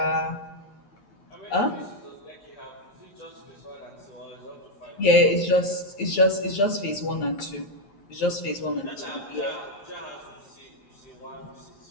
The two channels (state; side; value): late; right; 10 ms